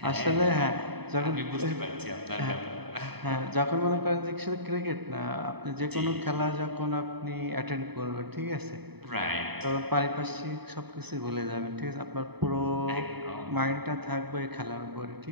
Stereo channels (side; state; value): left; late; 0.98 ms